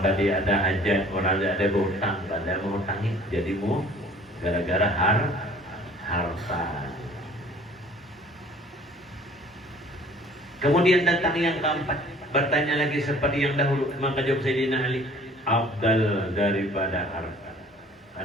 tadi ada hajat, orang ada berhutang, pada mengutangi jadi gara-gara harta. Kemudian datang yang keempat, bertanya lagi seperti yang dahulu. Maka jawab Sayyidina Ali, afdal daripada harta.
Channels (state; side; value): normal; both; correlation 0.52